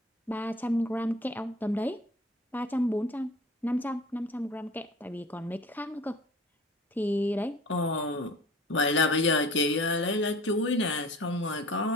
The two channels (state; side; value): normal; both; correlation 0.43